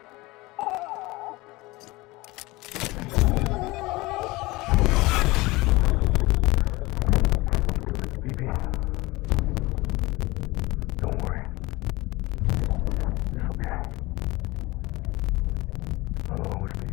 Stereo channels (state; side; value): quieter; right; 21.4 dB